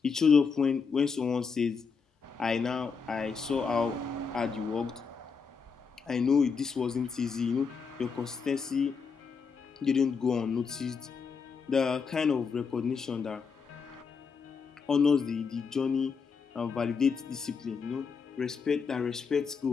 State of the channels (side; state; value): right; quieter; 5.5 dB